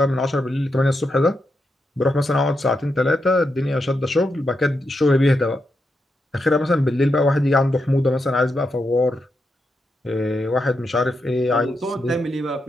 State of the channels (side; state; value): both; normal; correlation 0.85